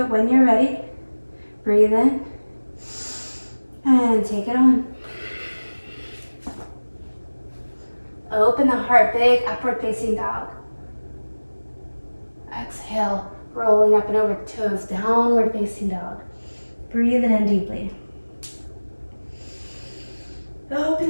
it, when you're ready, breathe in and take it on. Open the heart, big upward facing dog. Exhale, rolling up and over toes, downward facing dog. Breathe it in deeply. Open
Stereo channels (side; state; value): both; inverted; correlation -1.00